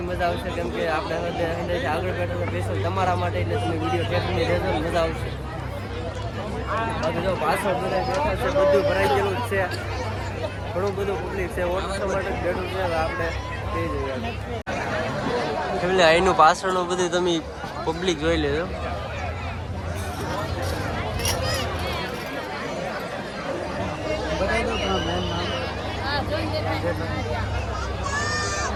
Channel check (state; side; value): identical; both; correlation 1.00